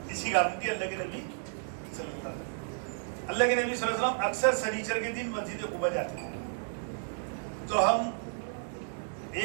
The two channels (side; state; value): left; silent; digital silence